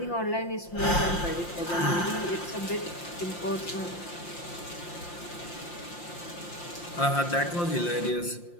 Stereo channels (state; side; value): late; right; 5.7 ms